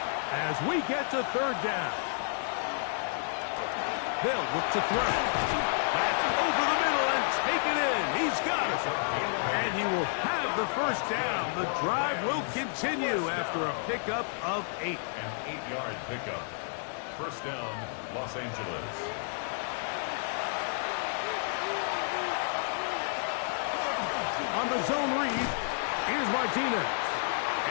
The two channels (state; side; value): silent; right; 57 dB below the other